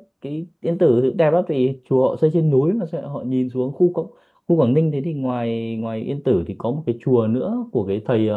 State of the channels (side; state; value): both; identical; correlation 1.00